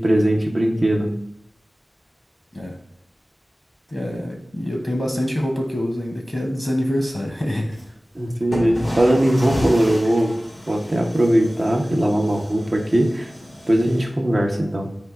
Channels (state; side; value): normal; both; correlation 0.97